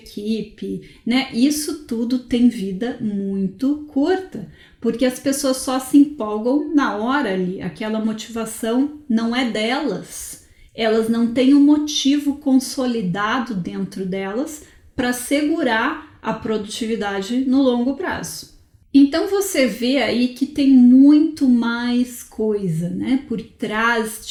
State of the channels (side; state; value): both; identical; correlation 1.00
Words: né? Isso tudo tem vida muito curta, porque as pessoas só se empolgam na hora ali, aquela motivação não é delas, elas não têm um motivo consolidado dentro delas para segurar a produtividade no longo prazo. Então você vê aí que tem muito mais coisa, né, por trás